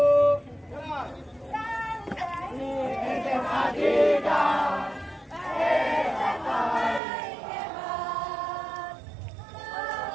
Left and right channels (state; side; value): drops out; left; at 7.0 s